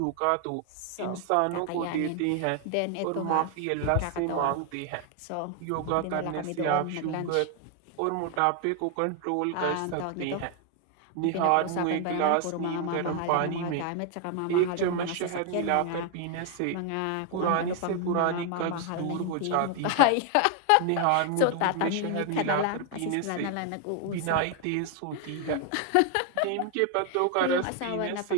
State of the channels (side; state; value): both; different; correlation 0.00